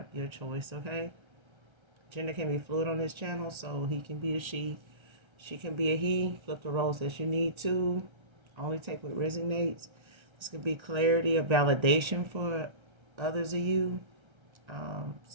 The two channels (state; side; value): late; left; 1.3 ms